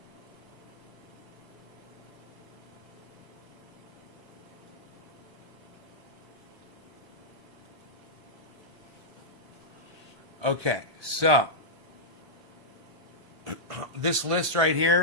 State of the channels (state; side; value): late; left; 1.2 ms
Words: Okay, so this list right